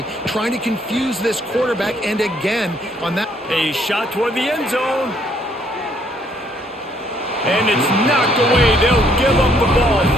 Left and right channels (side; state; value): both; normal; correlation 0.67